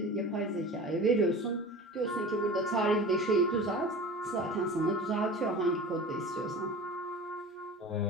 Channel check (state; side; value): normal; both; correlation 0.36